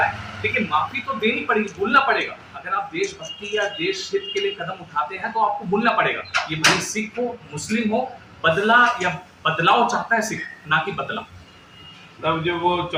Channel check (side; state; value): both; identical; correlation 1.00